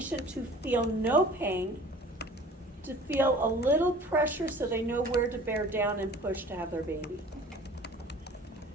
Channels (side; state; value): both; normal; correlation 0.45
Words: to feel no pain, to feel a little pressure so they know where to bear down and push to have their baby,